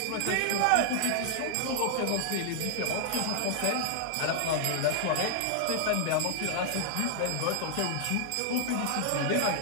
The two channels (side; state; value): both; different; correlation 0.00